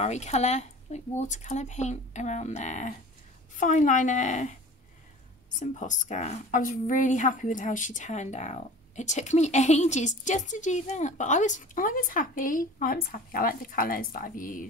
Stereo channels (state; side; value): normal; both; correlation 0.41